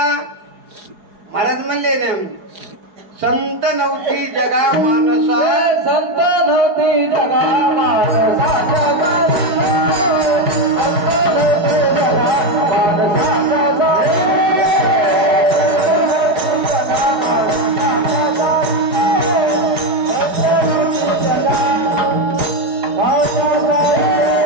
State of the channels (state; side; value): late; left; 4.8 ms